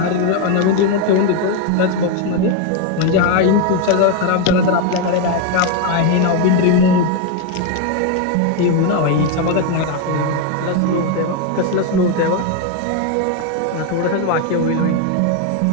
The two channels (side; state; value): both; different; correlation 0.02